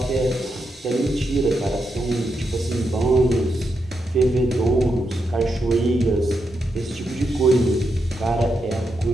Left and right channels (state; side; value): normal; both; correlation 0.84